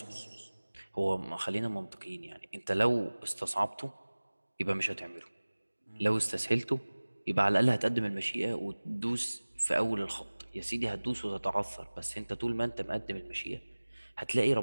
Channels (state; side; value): inverted; both; correlation -1.00